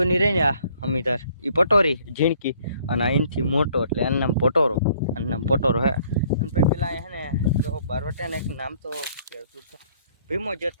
રહી ને આ અમિતાર એ પટોરી ઝીણકી, અને આ એનથી મોટો એટલે એનું નામ પટોરો, આનું નામ પટોરો હે. અને ભાઈ પેલા અહીંયા હે ને જો બારવટિયાને એક નામ તો ભીમો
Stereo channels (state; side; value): inverted; both; correlation -0.61